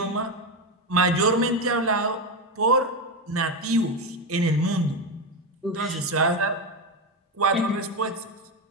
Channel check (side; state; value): both; normal; correlation 0.12